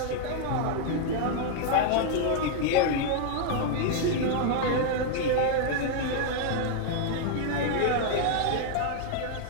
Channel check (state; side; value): different; both; correlation 0.00